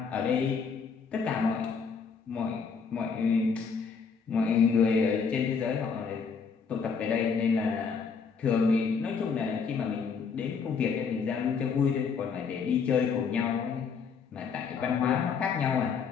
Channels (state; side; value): quieter; right; 5.8 dB